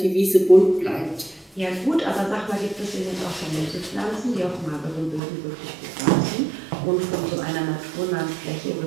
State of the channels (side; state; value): left; drops out; at 5.2 s